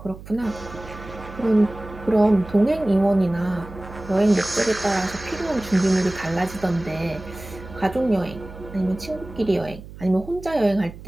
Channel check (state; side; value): noise; right; hum, 15 dB below the sound